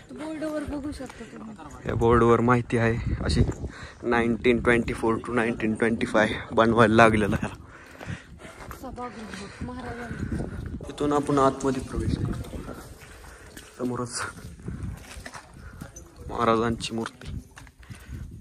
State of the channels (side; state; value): both; identical; correlation 1.00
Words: बोर्डवर बघू शकता तुम्ही. या बोर्डवर माहिती आहे अशी 1924 to 1925 बनवायला लागलेलं आहे. सभागृह महाराजांनी. इथून आपण आतमध्ये प्रवेश करतो. समोरच महाराजांची मूर्ती.